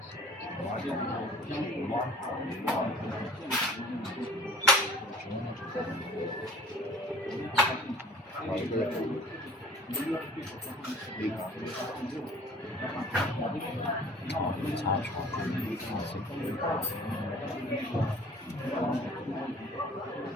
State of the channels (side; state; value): both; normal; correlation 0.49